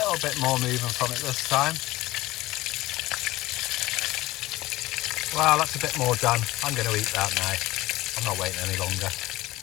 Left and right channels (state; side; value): quieter; right; 18.0 dB